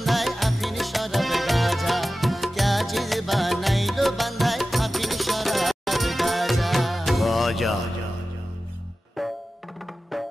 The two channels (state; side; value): normal; both; correlation 0.95